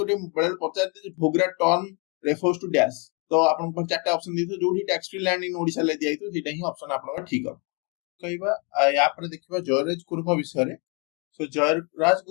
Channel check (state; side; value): quieter; right; 33.9 dB